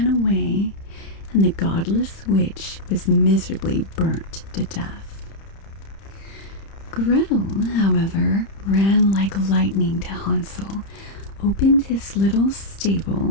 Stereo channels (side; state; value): right; late; 30 ms